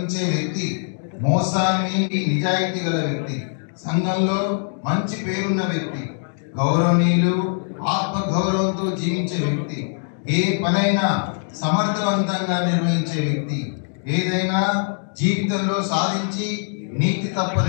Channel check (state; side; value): silent; right; digital silence